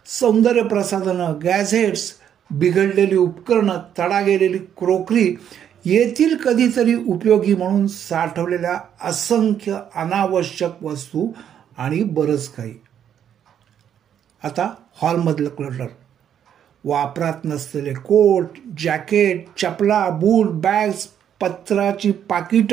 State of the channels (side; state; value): left; quieter; 9.3 dB